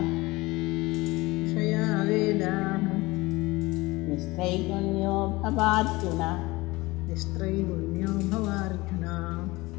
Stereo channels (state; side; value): quieter; right; 21.6 dB